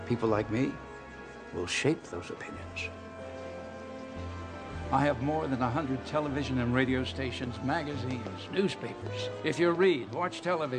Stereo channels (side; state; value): both; identical; correlation 1.00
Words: People like me will shape those opinions. I have more than 100 television and radio stations, magazines, newspapers. If you read, watch